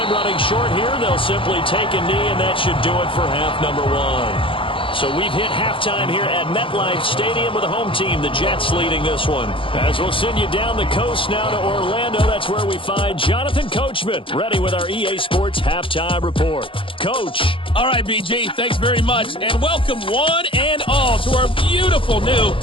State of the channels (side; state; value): right; late; 0.25 ms